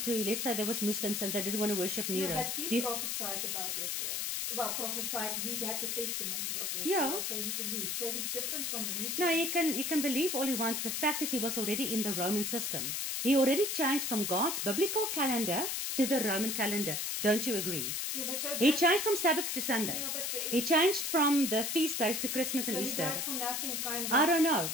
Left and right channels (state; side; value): noise; left; hiss, 1 dB below the sound